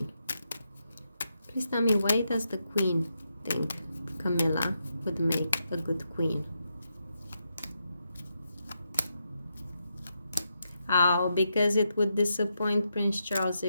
Please tell me, why does the Queen think Camilla would make a good queen? Oh, because it would disappoint Prince Charles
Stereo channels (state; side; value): inverted; both; correlation -0.84